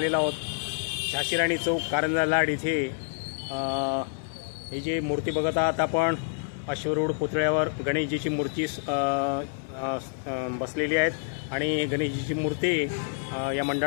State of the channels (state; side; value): silent; right; 60 dB below the other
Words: आहोत झाशीराणी चौक कारंजा लाड इथे. ही जी मूर्ती बघत आहात आपण अश्वरूढ पुतळ्यावर गणेशजीची मूर्ती बसलेली आहेत आणि गणेशजीची मूर्ती या